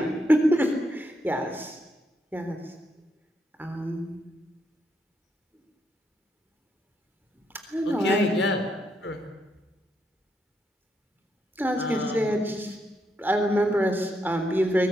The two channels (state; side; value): normal; both; correlation 0.79